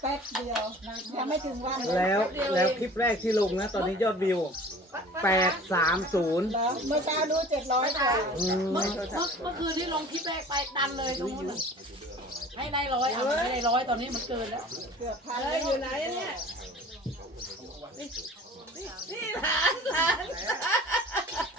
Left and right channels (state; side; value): normal; both; correlation 0.44